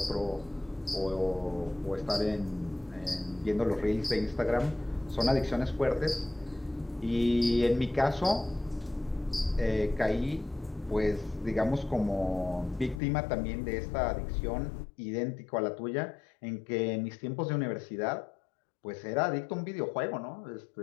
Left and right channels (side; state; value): right; drops out; at 13.0 s